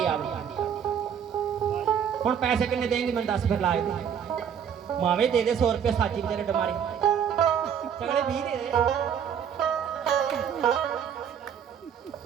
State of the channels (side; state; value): left; quieter; 8.2 dB